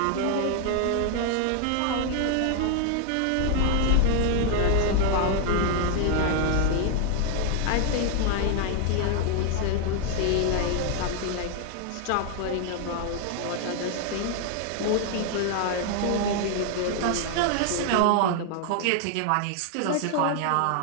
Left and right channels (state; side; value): different; both; correlation 0.00